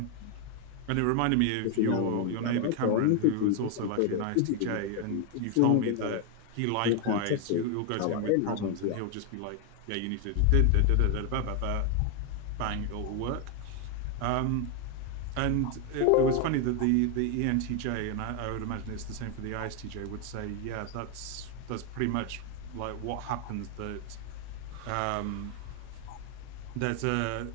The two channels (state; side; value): different; both; correlation 0.01